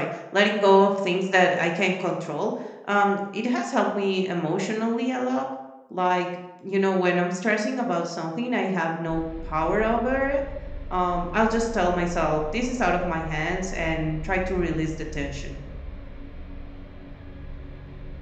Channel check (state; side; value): identical; both; correlation 1.00